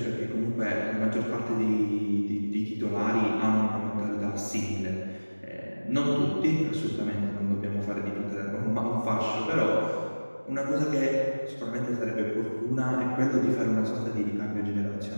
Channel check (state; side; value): inverted; both; correlation -1.00